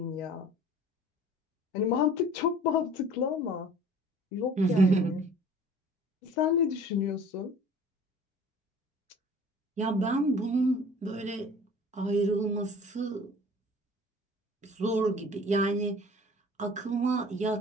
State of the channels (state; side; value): normal; both; correlation 0.47